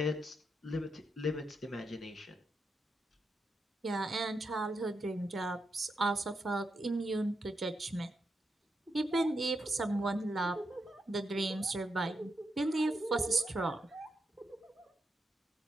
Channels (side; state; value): both; normal; correlation 0.84